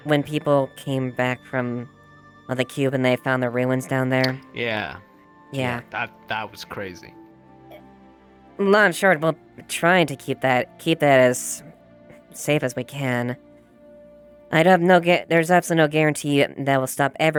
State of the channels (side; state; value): both; identical; correlation 1.00